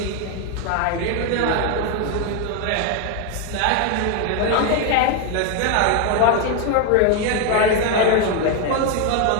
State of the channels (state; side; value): different; both; correlation 0.01